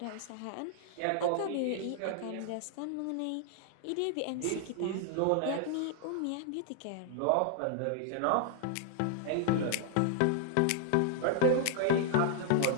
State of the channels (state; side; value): different; both; correlation 0.00